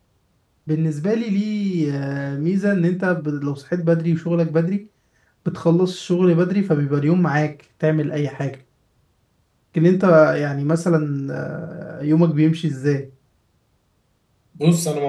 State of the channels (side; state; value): both; identical; correlation 1.00